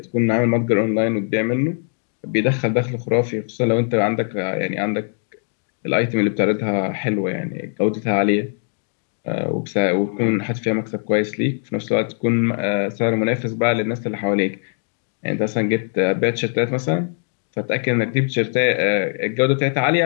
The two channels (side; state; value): right; silent; 57 dB below the other